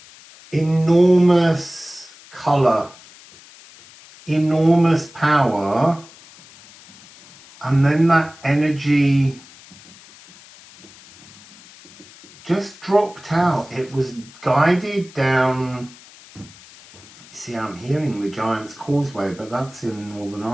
enormous colour, enormous power, and then that energy just dropped out. It was guided down. See, I'm hearing the Giant's Causeway, but that's in Northern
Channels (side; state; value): left; noise; hiss, 22 dB below the sound